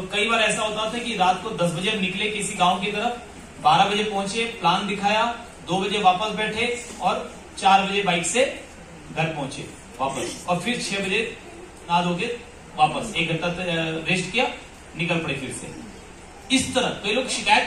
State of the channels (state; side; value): identical; both; correlation 1.00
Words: कई बार ऐसा होता था कि रात को 10 बजे निकले किसी गांव की तरफ, 12 बजे पहुंचे, प्लान दिखाया, 2 बजे वापस बैठे, और 4 बजे बाइक से घर पहुंचे वापस, और फिर 6 बजे नहा धो के वापस 1 घंटा रेस्ट किया, निकल पड़े फिर से। इस तरह कई लोग शिकायत